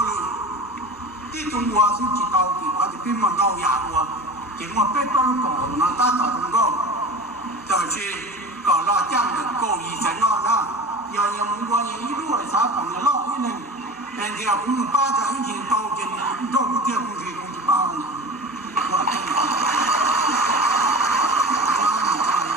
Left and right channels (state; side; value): normal; both; correlation 0.34